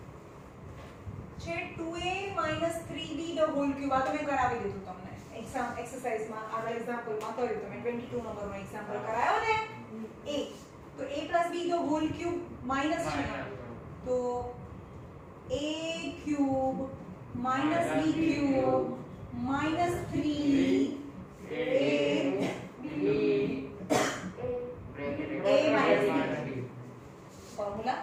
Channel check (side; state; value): both; identical; correlation 1.00